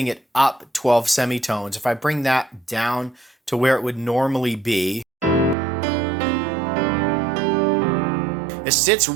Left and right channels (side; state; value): left; drops out; at 5.6 s